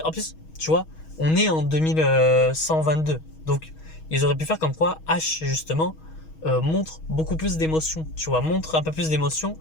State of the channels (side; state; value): right; late; 6.3 ms